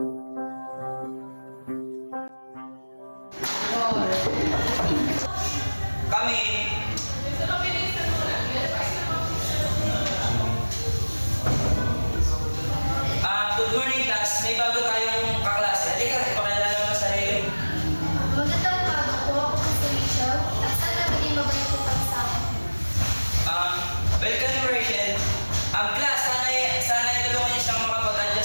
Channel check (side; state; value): both; inverted; correlation -1.00